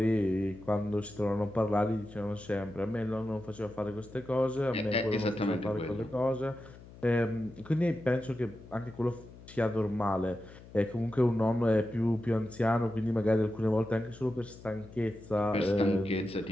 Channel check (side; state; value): left; noise; hum, 19 dB below the sound